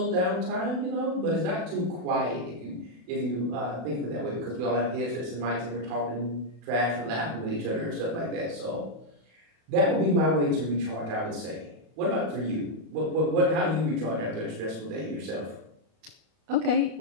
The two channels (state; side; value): late; left; 32 ms